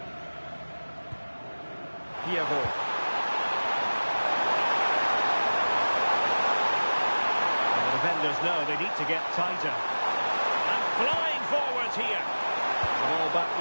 Piavo. And the defenders know they need to get tighter. And flying forwards here. The ball back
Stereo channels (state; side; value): inverted; both; correlation -1.00